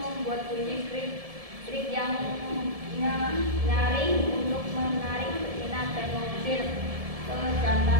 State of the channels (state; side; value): late; left; 1.7 ms